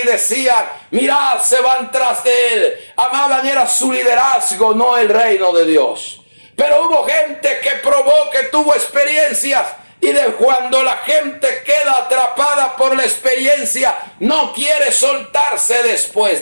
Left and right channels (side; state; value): both; inverted; correlation -1.00